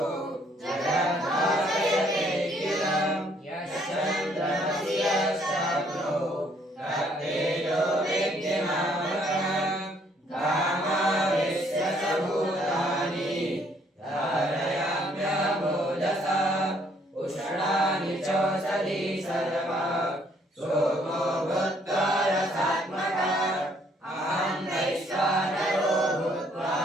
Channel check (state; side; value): normal; both; correlation 0.66